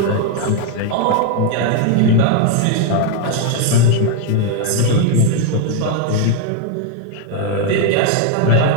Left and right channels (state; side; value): different; both; correlation 0.01